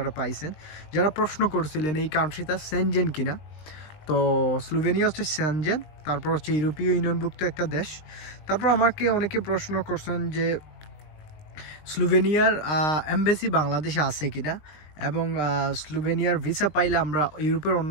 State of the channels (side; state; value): right; late; 20 ms